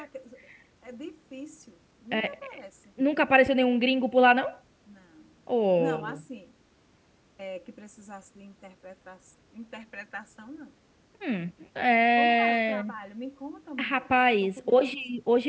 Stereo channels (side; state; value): both; identical; correlation 1.00